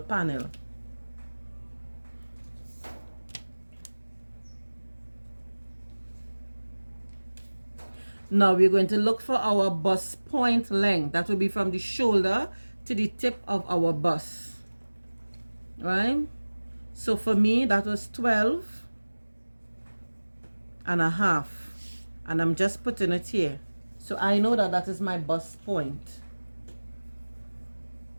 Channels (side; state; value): both; inverted; correlation -1.00